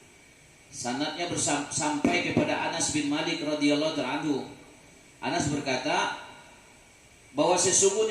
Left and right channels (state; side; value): identical; both; correlation 1.00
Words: sanadnya sampai kepada Anas bin Malik radhiyallahu anhu. Anas berkata bahwa